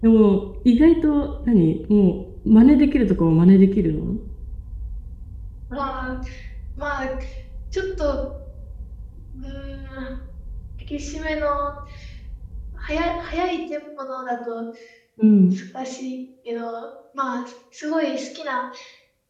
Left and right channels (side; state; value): both; identical; correlation 1.00